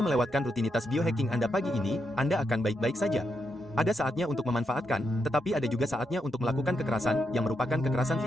melewatkan rutinitas biohacking Anda pagi ini, Anda akan baik-baik saja. Ada saatnya untuk memanfaatkan, tetapi ada juga saatnya untuk melakukan kekerasan, yang merupakan kekerasan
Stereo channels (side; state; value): both; normal; correlation 0.82